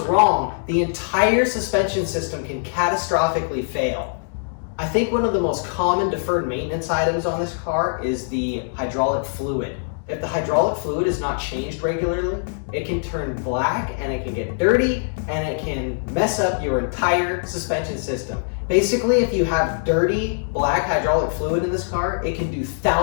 wrong, the entire suspension system can catastrophically fail. I think one of the most common deferred maintenance items on this car is the hydraulic fluid. If the hydraulic fluid is not changed regularly, it can turn black and it can get dirty and it can mess up your entire suspension system. Basically, if you have dirty black hydraulic fluid in this car, it can do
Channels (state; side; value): silent; right; digital silence